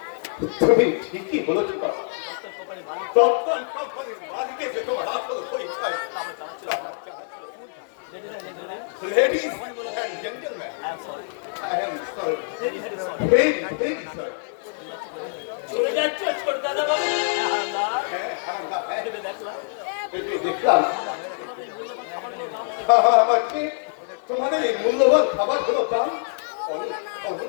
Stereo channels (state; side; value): silent; right; digital silence